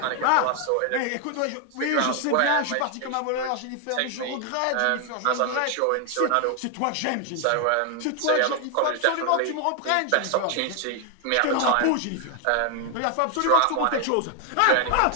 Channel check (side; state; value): both; different; correlation 0.00